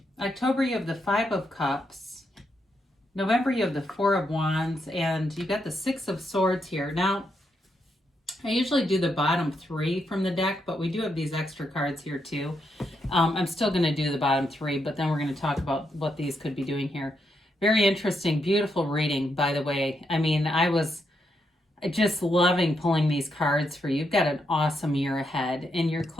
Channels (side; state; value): both; normal; correlation 0.81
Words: October, you have the Five of Cups. November, you have the Four of Wands, and you got the Six of Swords here. Now, I usually do the bottom three from the deck, but we do have these extra cards here too. I'm still going to do the bottom three, but then we're going to talk about what these could be doing here. Very interesting, beautiful reading, by the way. I mean, I was just loving pulling these cards for you. You've got an awesome year ahead, and your